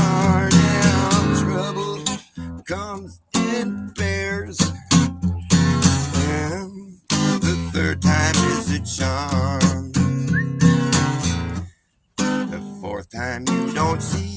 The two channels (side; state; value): both; identical; correlation 1.00